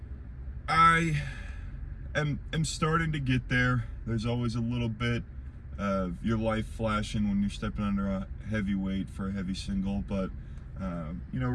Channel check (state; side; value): identical; both; correlation 1.00